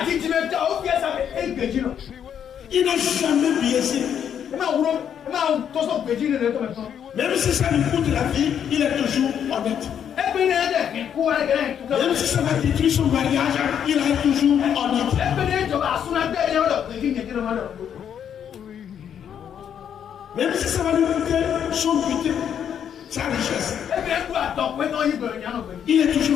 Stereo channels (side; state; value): right; quieter; 8.7 dB